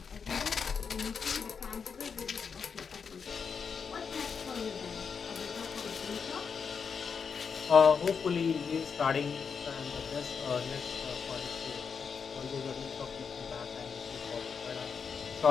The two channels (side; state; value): right; quieter; 6.1 dB